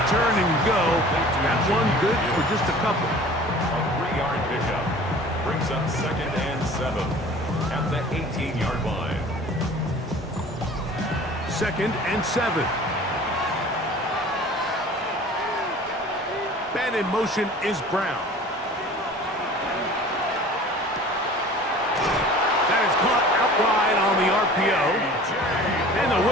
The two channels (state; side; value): normal; both; correlation 0.44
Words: turn and go. That one good for just a couple. A 3-yard pickup brings up 2nd and 7 at the 18-yard line. 2nd and 7. Man in motion is Brown. That is caught out wide on the RPO. And they'll